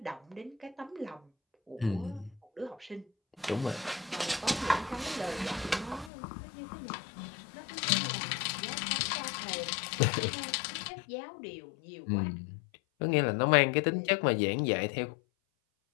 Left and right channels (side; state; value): right; drops out; at 6.1 s